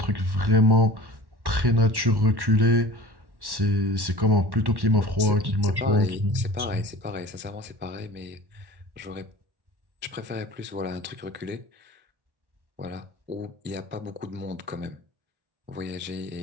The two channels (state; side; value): late; left; 1.1 ms